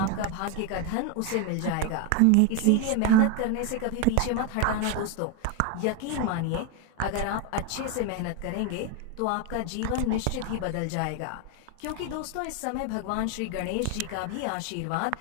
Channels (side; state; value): both; different; correlation 0.01